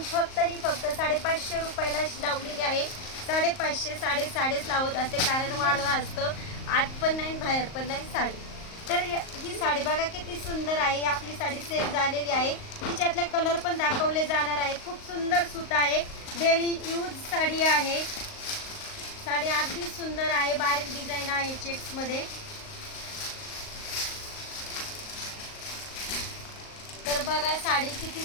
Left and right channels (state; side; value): late; right; 38 ms